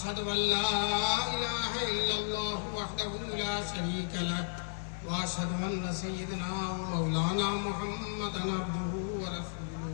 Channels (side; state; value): right; silent; 55 dB below the other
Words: أن لا إله إلا الله وحده لا شريك له وأشهد أن سيدنا ومولانا محمدا عبده ورسوله